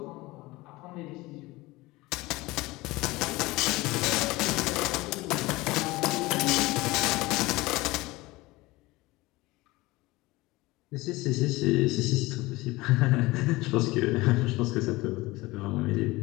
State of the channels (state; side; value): quieter; right; 20.8 dB